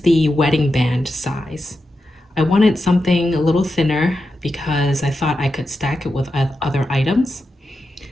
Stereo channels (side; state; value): both; normal; correlation 0.89